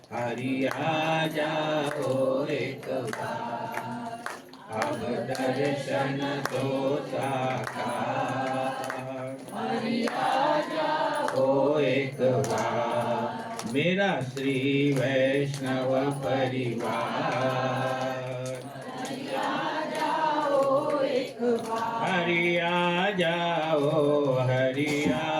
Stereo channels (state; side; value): identical; both; correlation 1.00